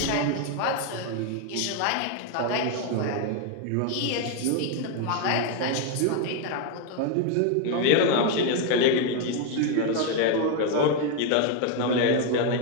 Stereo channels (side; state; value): both; different; correlation 0.01